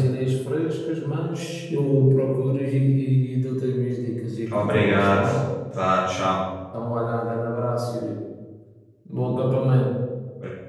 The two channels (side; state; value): both; identical; correlation 1.00